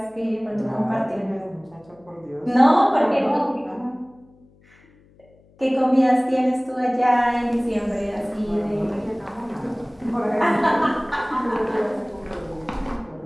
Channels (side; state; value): left; noise; hum, 29 dB below the sound